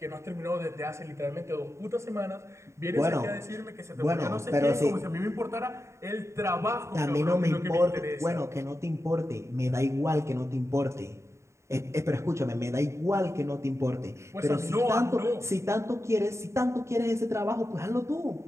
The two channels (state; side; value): late; left; 0.14 ms